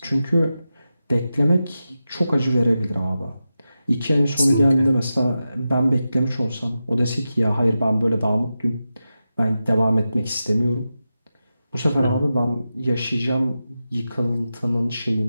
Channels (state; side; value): inverted; both; correlation -0.91